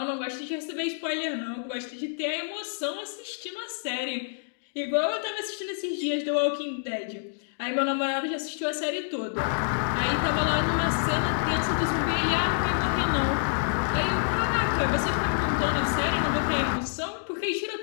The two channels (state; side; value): silent; right; digital silence